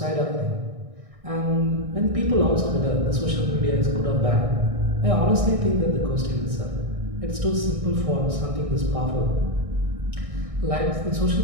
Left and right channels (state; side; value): late; left; 1.6 ms